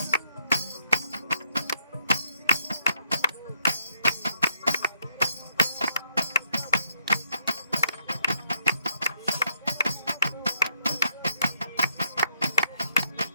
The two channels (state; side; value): inverted; both; correlation -0.73